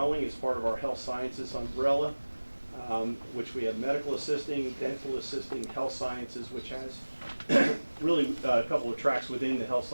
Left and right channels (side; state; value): both; inverted; correlation -1.00